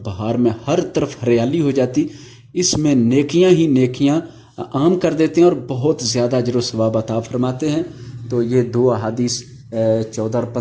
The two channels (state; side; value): identical; both; correlation 1.00